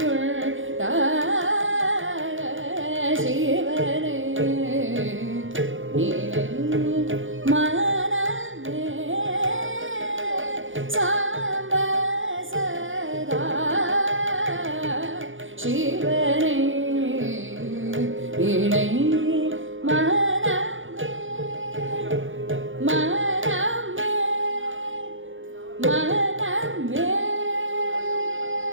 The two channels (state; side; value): late; left; 0.57 ms